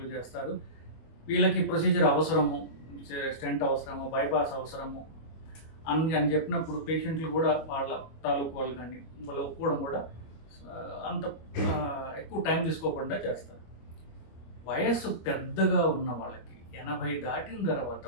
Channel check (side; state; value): right; late; 25 ms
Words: చేస్తారు. వీళ్ళకి ప్రొసీజర్ అవసరము, స్టెంట్ అవసరము, బైపాస్ అవసరము అని చెప్పినప్పుడు పేషెంట్లు కూడా వాళ్ళ తాలూకు వాళ్ళు కానీ వాళ్ళు ఒప్పుకోవడం కూడా అంత ఎక్కువ టైం తీసుకోకుండా చేస్తారు. వయస్సు పెద్దగా ఉన్న వాళ్ళకి 80 దాటిన తర్వాత